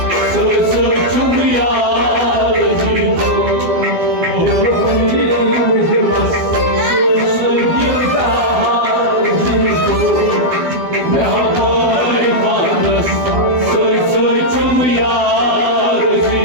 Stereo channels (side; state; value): left; late; 12 ms